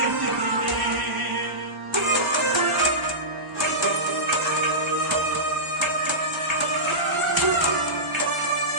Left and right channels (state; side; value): late; left; 1.1 ms